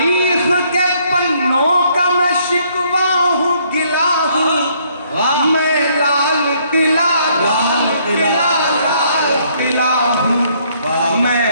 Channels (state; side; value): inverted; both; correlation -0.66